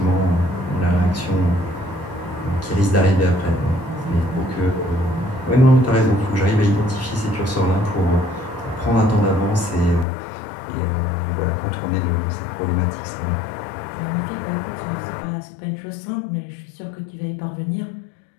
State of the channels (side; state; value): right; drops out; at 10.1 s